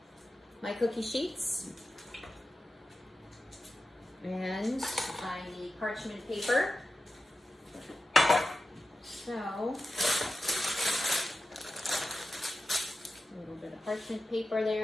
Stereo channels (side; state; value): both; normal; correlation 0.92